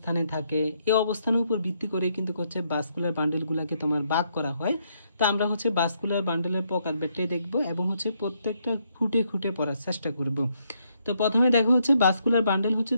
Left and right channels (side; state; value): both; inverted; correlation -0.75